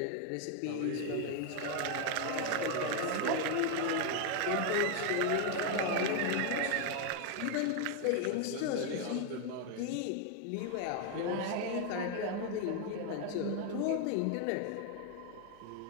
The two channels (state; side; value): different; both; correlation 0.01